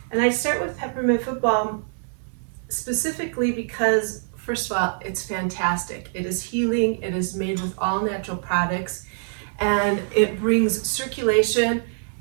And I start with Peppermint Foot Balm specifically because, first of all, it's fantastic. It is healing, it is made with all natural products, and it brings circulation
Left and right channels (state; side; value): silent; left; 62 dB below the other